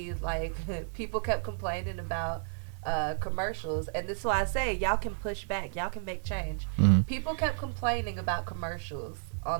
like people kept complaining about commercials, and this is why I say y'all can push back, y'all can make change. People kept complaining about commercials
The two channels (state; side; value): silent; left; digital silence